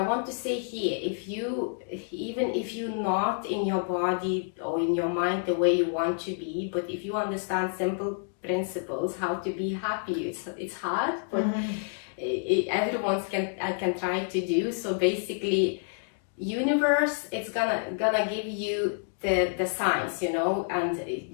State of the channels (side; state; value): right; silent; digital silence